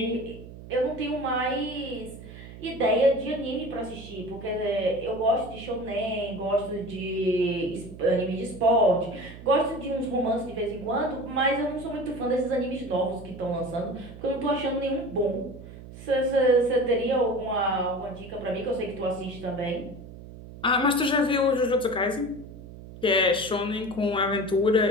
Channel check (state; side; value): noise; right; hum, 15 dB below the sound